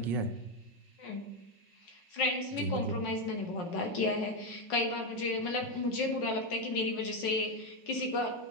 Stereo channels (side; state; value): right; late; 5.4 ms